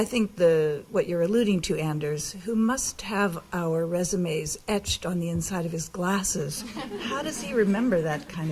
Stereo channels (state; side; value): identical; both; correlation 1.00